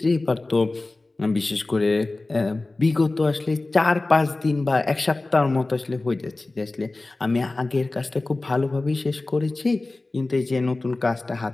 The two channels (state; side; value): quieter; right; 3.1 dB